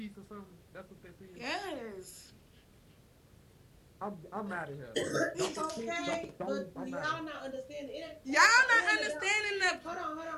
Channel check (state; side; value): identical; both; correlation 1.00